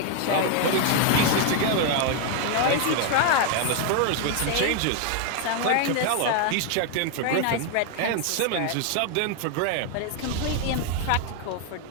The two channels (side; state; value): both; different; correlation 0.01